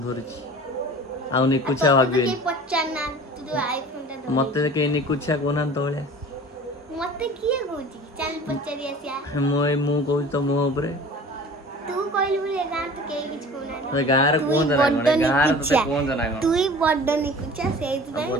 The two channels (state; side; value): normal; both; correlation 0.42